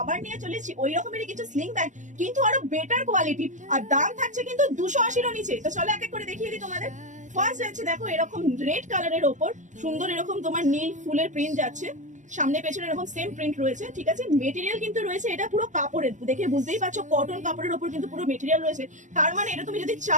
নিয়ে চলেছি ওই রকমেরই কিছু স্লিং ব্যাগ, কিন্তু আরো বেটার কোয়ালিটি, আর দাম থাকছে কিন্তু 280 নিচে। তো চলো এক এক করে দেখিয়ে দিই তোমাদের। ফার্স্ট যাচ্ছে দেখো এরকম রেড কালারের ওপর সুন্দর এরকম তোমার নীল ফুলের প্রিন্ট যাচ্ছে, সামনে পেছনে এরকম সেম প্রিন্ট রয়েছে, ঠিক আছে। মেটেরিয়াল কিন্তু রয়েছে এটা পুরো কাপড়ের, দেখে বুঝতেই পারছো কটন কাপড়ের উপর কিন্তু পুরো মেটেরিয়াল রয়েছে, তার মানে এটা তুমি যদি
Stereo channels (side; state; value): left; late; 0.35 ms